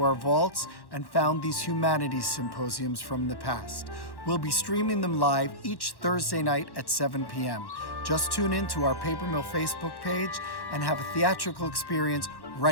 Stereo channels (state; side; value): late; right; 1.1 ms